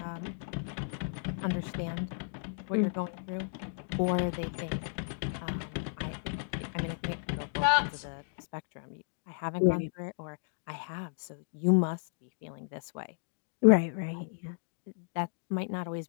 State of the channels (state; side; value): silent; right; digital silence